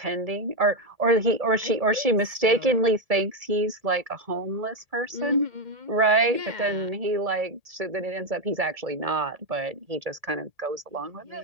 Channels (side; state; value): left; late; 1.7 ms